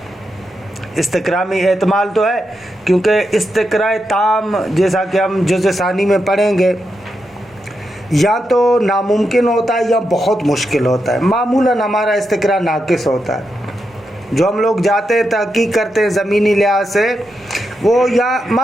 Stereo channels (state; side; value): normal; both; correlation 0.85